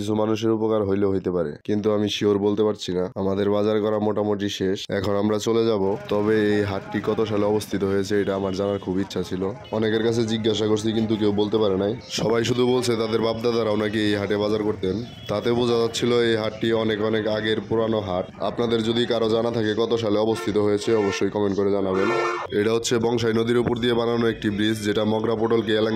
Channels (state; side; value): identical; both; correlation 1.00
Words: মানুষের উপকার হইলেও হইতে পারে, কিন্তু আমি শিওর বলতে পারছি না। আমাদের বাজার করা মোটামুটি শেষ, এখন আমরা চলে যাব। তবে এই হাটটি কত সালে অবস্থিত হয়েছে এটা আমার জানার খুব ইচ্ছা ছিল। অনেকের কাছে জিজ্ঞাসা করছি কিন্তু কেউ বলতে পারে নাই। সবাই শুধু বলছে তাদের বাপদাদারাও নাকি এই হাটে বাজার করতেন। তাতে বোঝা যাচ্ছিল এই হাটটি অনেক অনেক আগের পুরানো হাট। আপনাদের যদি কারো জানা থাকে কত সালে অবস্থিত হয়েছে অবশ্যই কমেন্ট করে জানাবেন। এটা হচ্ছে বংশাই নদীর উপর দিয়ে বানানো একটি ব্রিজ, যেটা মগরা পোটলকে